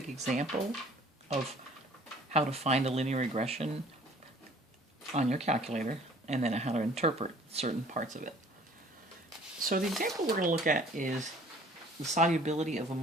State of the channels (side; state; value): both; normal; correlation 0.53